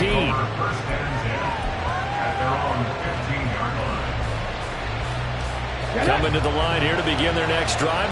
Coming to the line here to begin their next drive,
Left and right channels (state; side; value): identical; both; correlation 1.00